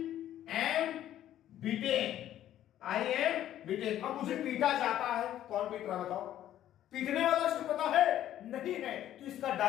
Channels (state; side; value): quieter; right; 12.0 dB